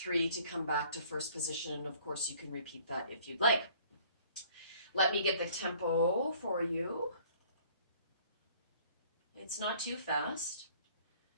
to come back to first position. And of course you can repeat that if you'd like. Let me get the tempo for you. It's not too fast.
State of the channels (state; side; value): inverted; both; correlation -0.55